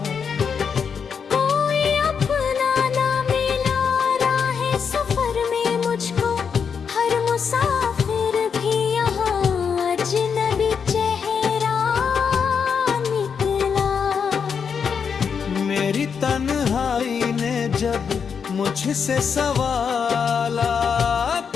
कोई अपना ना मिला राहे सफर में मुझको, हर मुसाफिर भी यहाँ अजनबी चेहरा निकला। मेरी तन्हाई ने जब मुझसे सवालात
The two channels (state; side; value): quieter; right; 6.5 dB